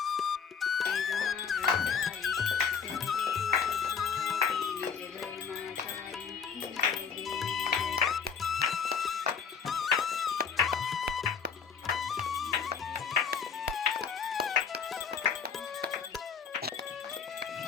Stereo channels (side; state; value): right; quieter; 6.5 dB